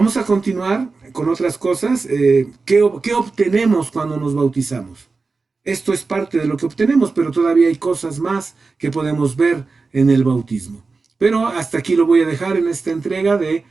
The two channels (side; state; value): left; quieter; 4.1 dB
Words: a continuar con otras cosas. ¿Qué obtenemos cuando nos bautizamos? Esto es parte de lo que obtenemos, pero todavía hay cosas más que podemos ver en el bautismo. Pero hasta aquí lo voy a dejar en esta entrega de